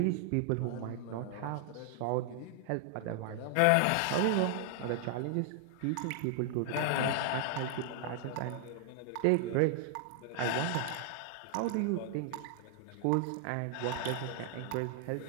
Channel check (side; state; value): both; different; correlation 0.00